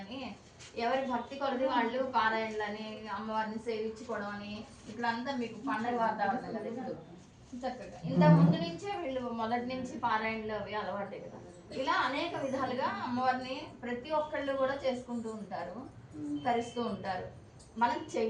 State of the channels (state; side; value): identical; both; correlation 1.00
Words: ఎవరి భక్తి కొలది వాళ్ళు పారాయణలని అమ్మవారిని సేవించుకోవడం అని ఇట్లంతా మీకు పండగ వాతావరణం కదా ఇప్పుడు చక్కగా ఇంత ముందు నుంచే వీళ్ళు మొదటి నుంచి పారాయణలు అవి అలవాటే కదా. ఇలా అనేక విధాలుగా అమ్మవారిని ప్రతి ఒక్కళ్ళు కూడా చేసుకుంటూ ఉంటారు, తరిస్తూ ఉంటారు. మనం